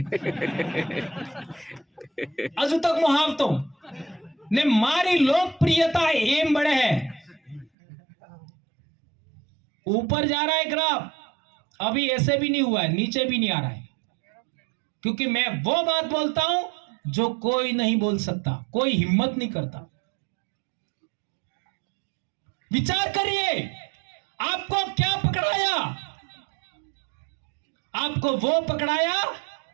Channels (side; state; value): left; drops out; at 7.7 s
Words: अजू तक मुहावतो ने मारी लोकप्रियता एम बड़े है. ऊपर जा रहा है ग्राफ, अभी ऐसे भी नहीं हुआ है, नीचे भी नहीं आ रहा है, क्योंकि मैं वो बात बोलता हूं जो कोई नहीं बोल सकता, कोई हिम्मत नहीं करता. विचार करिए, आपको क्या पकड़ाया? आपको वो पकड़ाया